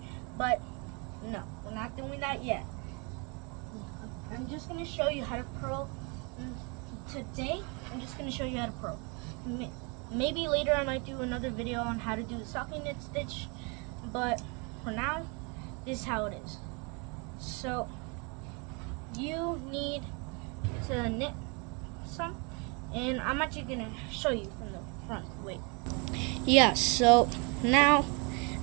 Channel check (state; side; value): quieter; left; 32.4 dB